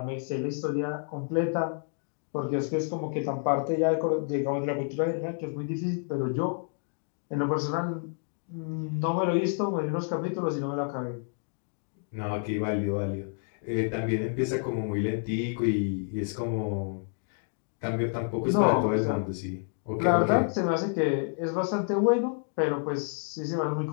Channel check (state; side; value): silent; right; 58 dB below the other